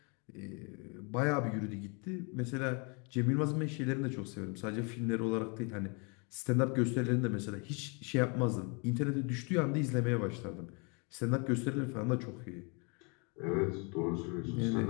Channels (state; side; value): quieter; right; 33.4 dB